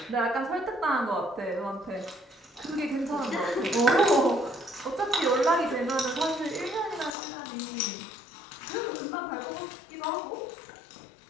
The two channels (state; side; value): drops out; right; at 7.1 s